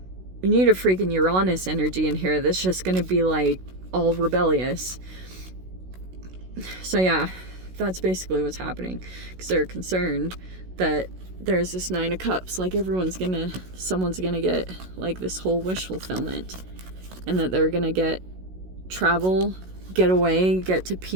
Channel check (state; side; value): late; left; 16 ms